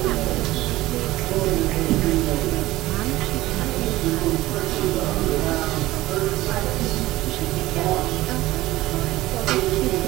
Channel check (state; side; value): quieter; left; 17.3 dB